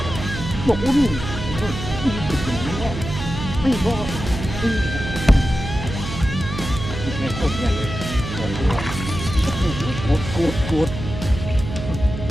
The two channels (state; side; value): noise; right; hum, 7 dB below the sound